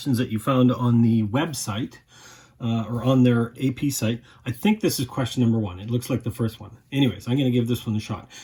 that you found on the website or on their AP site. I think this is question number 1. It looks like the first one. Anyways, I'm going to give this one a shot.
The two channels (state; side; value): identical; both; correlation 1.00